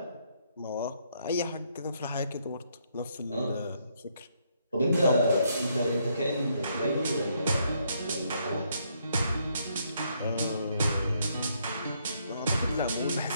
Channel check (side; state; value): both; inverted; correlation -0.73